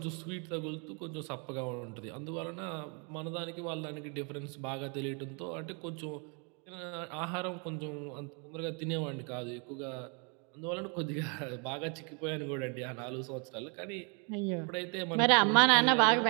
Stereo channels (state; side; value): quieter; left; 35.8 dB